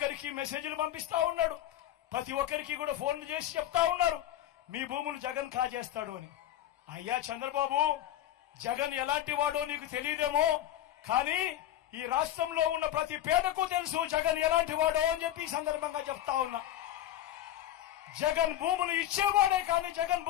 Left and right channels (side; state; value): right; quieter; 12.5 dB